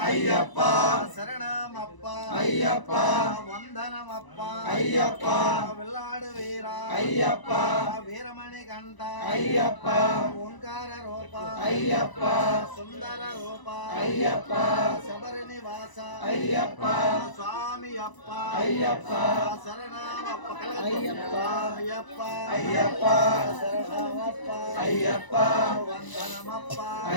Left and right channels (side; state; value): right; late; 1.0 ms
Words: అయ్యప్ప శరణమప్ప అయ్యప్ప వందనమప్ప అయ్యప్ప వెల్లాడు వీర అయ్యప్ప వీరమణి కంఠ అయ్యప్ప ఓంకార రూప అయ్యప్ప సుందర రూప అయ్యప్ప శబరి నివాస అయ్యప్ప స్వామియప్ప అయ్యప్ప శరణమప్ప అయ్యప్ప అయ్యప్ప అయ్యప్ప శరణమప్ప అయ్యప్ప వందనమప్ప